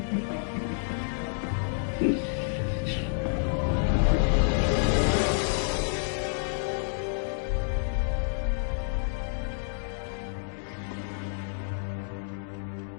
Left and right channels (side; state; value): right; silent; digital silence